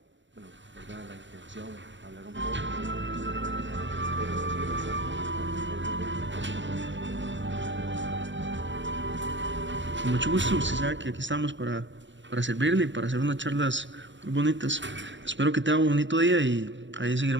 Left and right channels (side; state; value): left; late; 0.54 ms